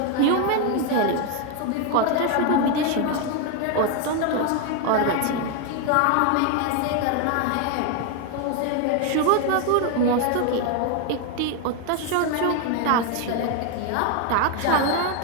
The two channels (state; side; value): different; both; correlation 0.01